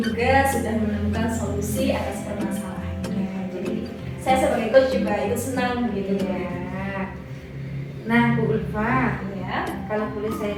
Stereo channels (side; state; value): both; identical; correlation 1.00